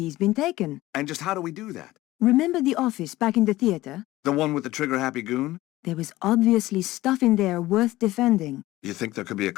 been taken. And just how do we do that? Remember the office back in the theater? The one with the trigger-happy goon? There was obviously stuff in there worth defending. You think there could be a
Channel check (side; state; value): right; quieter; 17.2 dB